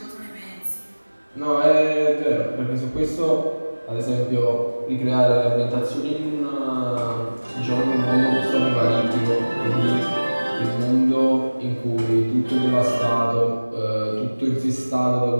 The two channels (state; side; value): inverted; both; correlation -1.00